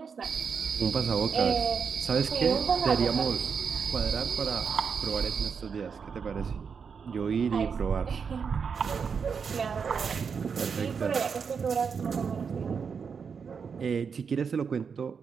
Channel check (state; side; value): quieter; left; 6.1 dB